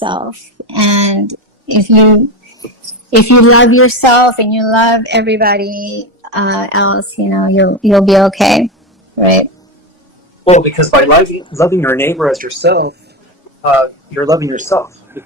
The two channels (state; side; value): normal; both; correlation 0.16